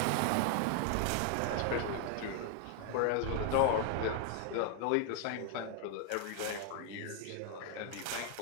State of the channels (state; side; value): different; both; correlation 0.00